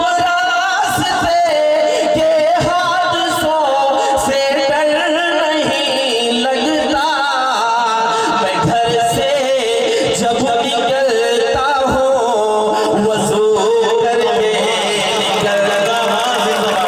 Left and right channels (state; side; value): identical; both; correlation 1.00